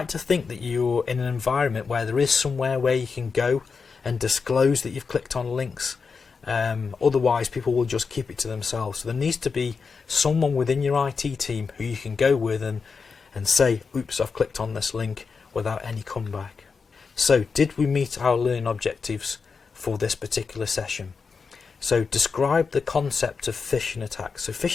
to think that you're in an environment where there is somewhere where you can go and disclose that you've clicked on links. Otherwise, people will just keep it to themselves. So there needs to be someone within your IT team who you can go with and say, oops, I've clicked on this link, without any comeback. So did we meet our learning objectives for this particular session? So describe the concept of phishing attacks. So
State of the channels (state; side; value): quieter; right; 5.2 dB